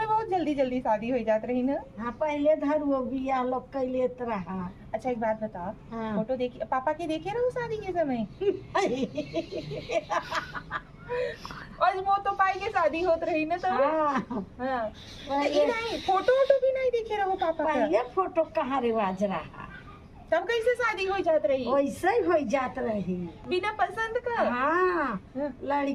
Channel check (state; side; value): identical; both; correlation 1.00